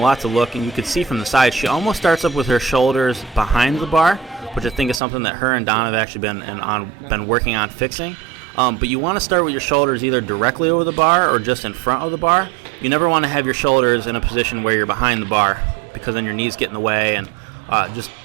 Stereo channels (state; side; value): drops out; left; at 5.0 s